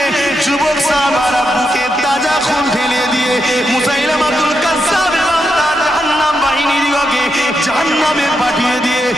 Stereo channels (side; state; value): both; normal; correlation 0.84